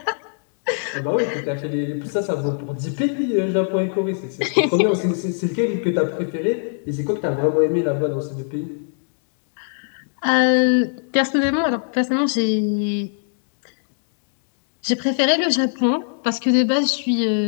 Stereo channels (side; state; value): right; silent; digital silence